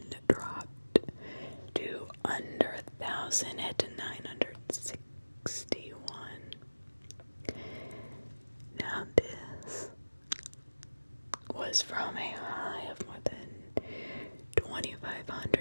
dropped to under 1,000 at 961. Now this was from a high of more than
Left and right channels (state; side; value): inverted; both; correlation -1.00